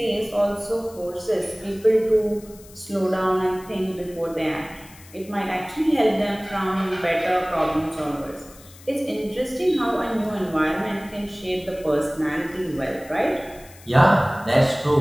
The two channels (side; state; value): left; noise; hiss, 22 dB below the sound